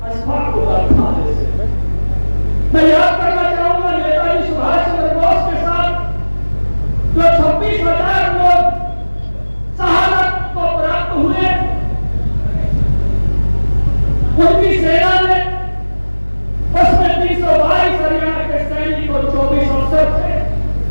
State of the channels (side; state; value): both; inverted; correlation -1.00